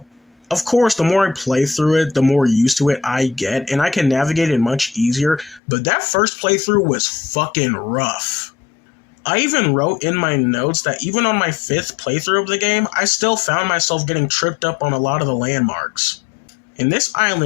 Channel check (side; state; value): right; drops out; at 5.6 s